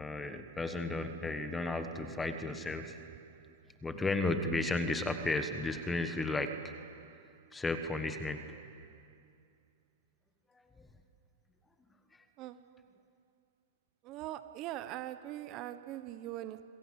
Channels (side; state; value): both; normal; correlation 0.61